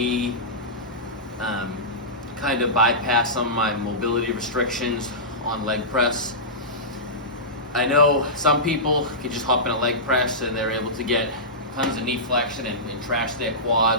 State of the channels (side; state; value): both; normal; correlation -0.17